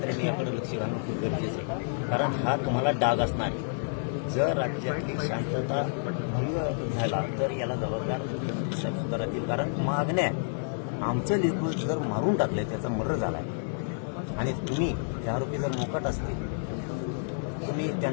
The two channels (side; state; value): right; silent; 58 dB below the other